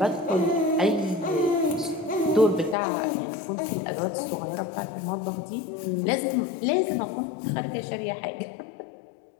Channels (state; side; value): drops out; right; at 2.8 s